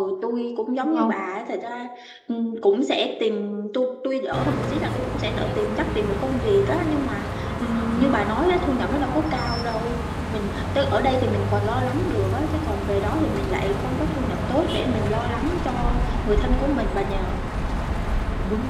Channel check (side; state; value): both; identical; correlation 1.00